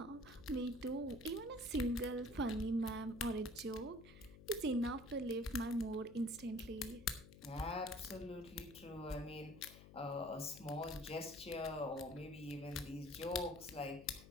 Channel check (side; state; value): left; noise; hum, 17 dB below the sound